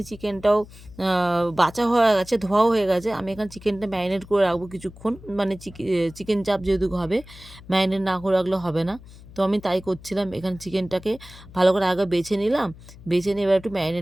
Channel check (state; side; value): noise; left; hum, 19 dB below the sound